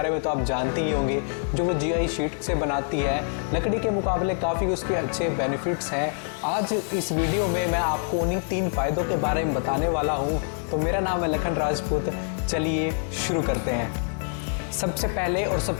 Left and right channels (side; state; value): right; silent; 60 dB below the other